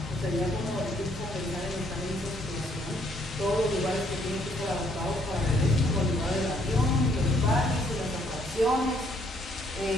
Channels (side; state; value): both; normal; correlation 0.67